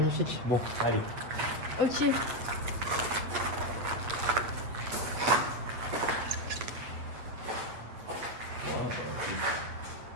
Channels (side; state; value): left; late; 8.6 ms